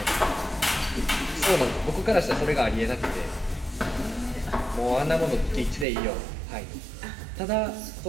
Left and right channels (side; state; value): left; drops out; at 5.9 s